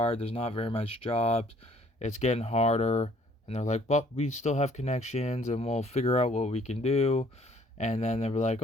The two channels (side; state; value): both; normal; correlation 0.60